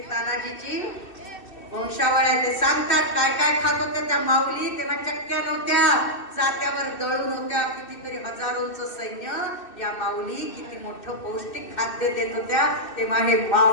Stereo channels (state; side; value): late; right; 2.6 ms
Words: तानाजीची वंशावळ्या ते सांगतात काय काय खात होत्या त्या माऊली, तेव्हा चक्क्या नव्हत्या, जात्यावर दळून होत्या, कितीतरी हजारोंचं सैन्य, या माऊली किती मोठं पौष्टिक खाद्य देत होत्या, तेव्हा हे